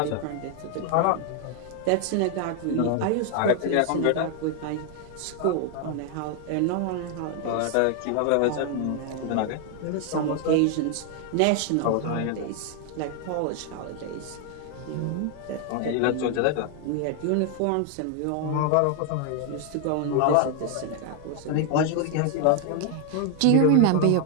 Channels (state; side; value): different; both; correlation 0.00